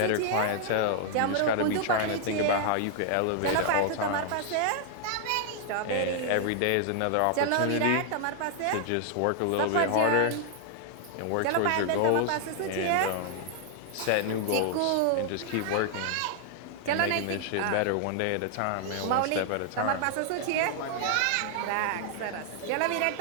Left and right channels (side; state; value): both; different; correlation 0.00